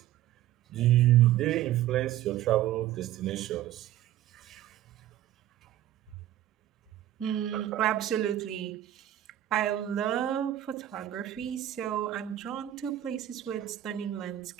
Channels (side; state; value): left; quieter; 12.8 dB